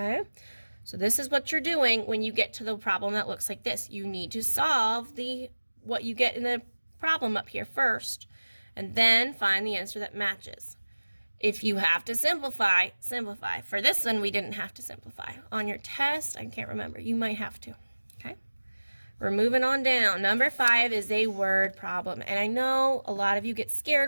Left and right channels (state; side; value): inverted; both; correlation -1.00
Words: so this is what you're doing when you get to the problem that looks like this. You need to solve what you get in the problem up here first, and then find the answer that matches. If you have to simplify, simplify. For this one, we didn't have to simplify. On your test, I can't remember. You might have to. Okay? We're moving on down. Number 5 is a word problem. And I know a lot of you get